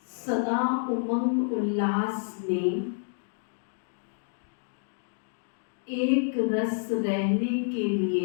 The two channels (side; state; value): right; silent; digital silence